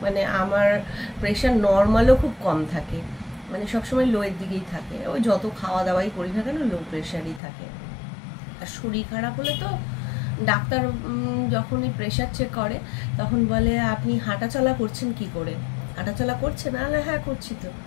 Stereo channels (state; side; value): drops out; right; at 7.4 s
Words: আমার প্রেশার নর্মালও খুব কম থাকে, সবসময় লোয়ের দিকেই থাকে। ওই যত খাওয়া দাওয়াই করি না কেন, লো প্রেশারই থাকে। আর শরীর খারাপ হলে তো ডাক্তার যখনই প্রেশার চেক করে তখন বলে আপনি হাঁটাচলা করছেন কি করে? হাঁটাচলা করছেন? হ্যাঁ করছি তো।